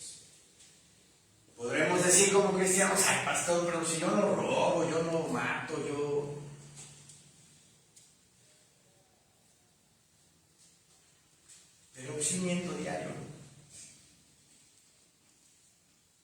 Podremos decir como cristianos, ay pastor, pero si yo no robo, yo no mato, pero sí miento diario,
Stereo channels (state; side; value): identical; both; correlation 1.00